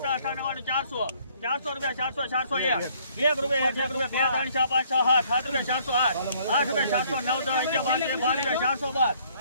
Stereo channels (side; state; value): both; inverted; correlation -0.62